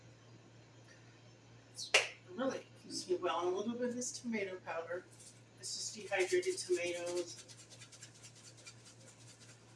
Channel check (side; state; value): both; identical; correlation 1.00